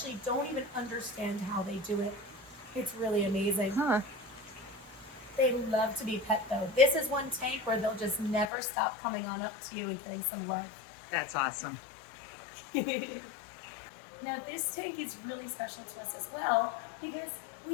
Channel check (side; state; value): right; drops out; at 8.5 s